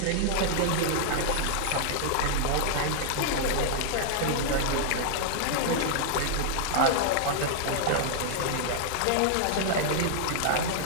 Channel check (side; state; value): both; different; correlation -0.01